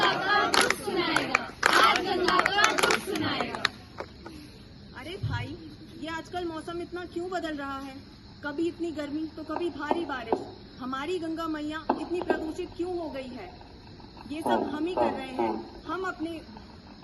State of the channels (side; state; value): both; identical; correlation 1.00